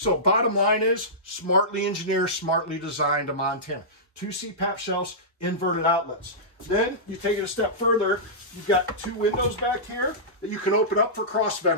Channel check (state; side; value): normal; both; correlation -0.17